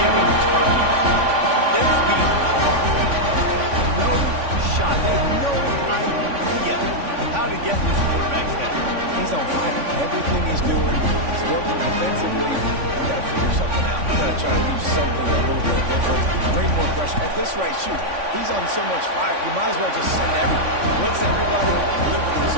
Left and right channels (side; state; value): left; late; 3.5 ms